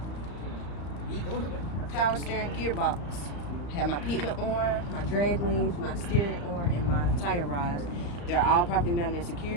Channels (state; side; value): late; right; 34 ms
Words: power steering gearbox. I have my pitman on, my drag links, my steering on, and my tire rods. They're all properly mounted and